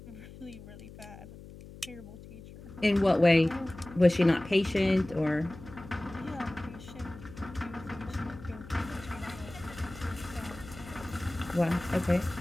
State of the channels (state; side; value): noise; left; hum, 16 dB below the sound